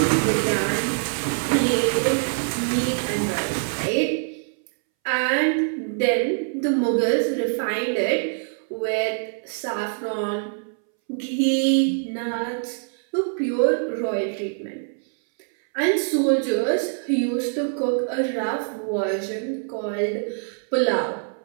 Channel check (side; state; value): left; silent; 62 dB below the other